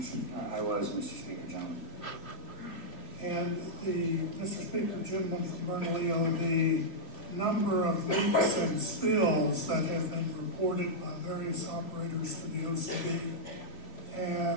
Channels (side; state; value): right; late; 3.6 ms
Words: I was, Mr. Speaker, gentlemen. And Mr. Speaker, gentleman from Bernalillo, the number of leaks and spills that have been reported by various operators to the OCD